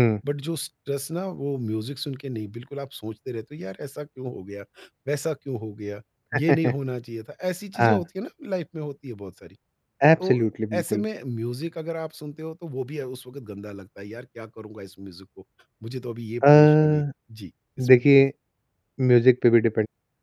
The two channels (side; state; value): both; identical; correlation 1.00